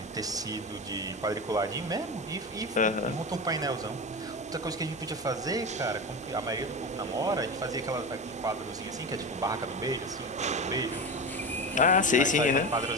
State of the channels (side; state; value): both; normal; correlation 0.24